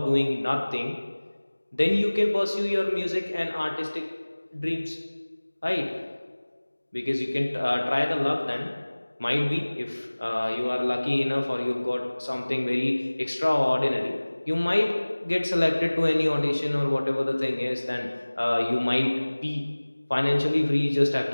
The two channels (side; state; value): both; inverted; correlation -1.00